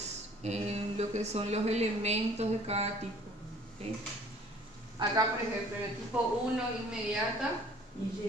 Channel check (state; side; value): normal; both; correlation 0.53